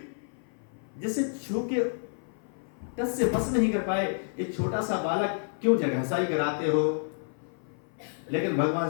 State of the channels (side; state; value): right; silent; 55 dB below the other